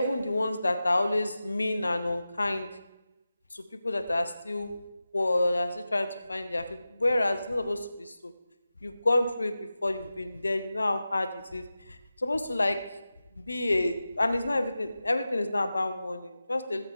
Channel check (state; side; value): inverted; both; correlation -0.94